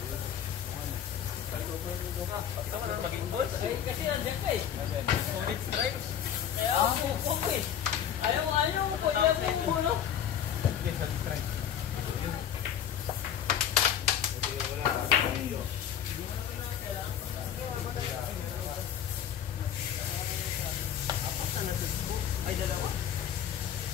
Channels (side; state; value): right; quieter; 9.3 dB